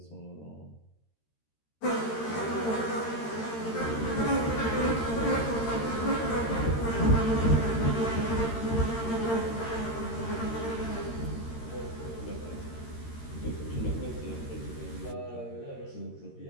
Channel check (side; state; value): right; late; 13 ms